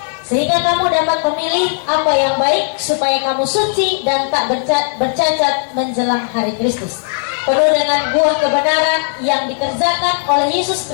Sehingga kamu dapat memilih apa yang baik, supaya kamu suci dan tak bercacat menjelang hari Kristus, penuh dengan buah kebenaran yang dikerjakan oleh Yesus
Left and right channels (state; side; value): silent; right; 69 dB below the other